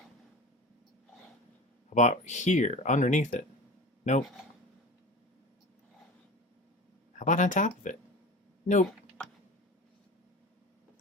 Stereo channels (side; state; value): both; normal; correlation 0.34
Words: How about here, underneath it? Nope. How about on top of it? Nope.